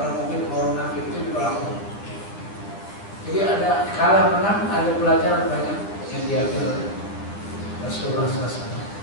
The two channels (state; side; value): late; right; 10 ms